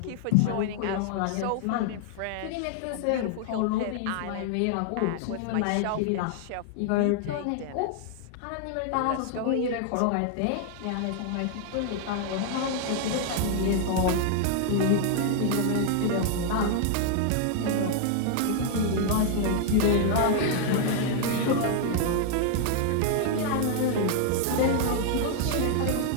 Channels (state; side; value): different; both; correlation 0.00